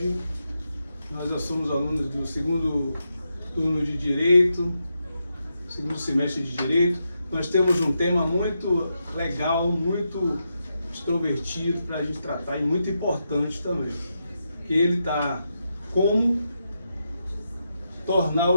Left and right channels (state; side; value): inverted; both; correlation -0.85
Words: Nós já somos alunos do segundo turno de Direito, segundo semestre de Direito. Nós temos um tema muito legal, muito extrovertido para a gente tratar e muito importante também. Que ele está como tornar